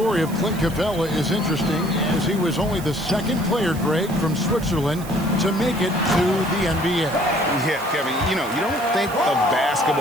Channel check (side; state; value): right; noise; hiss, 16 dB below the sound